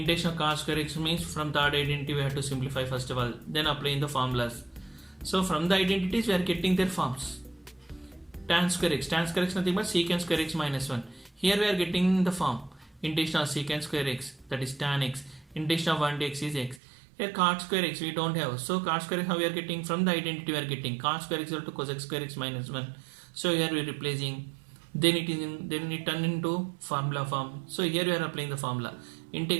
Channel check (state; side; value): drops out; left; at 16.8 s